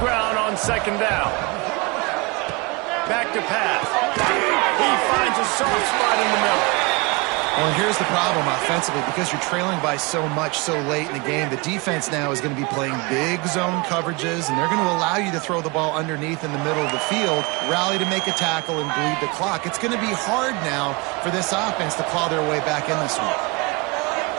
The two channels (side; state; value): left; quieter; 27.2 dB